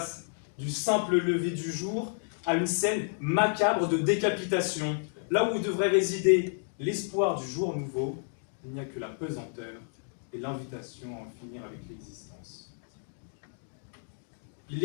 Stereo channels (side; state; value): right; silent; digital silence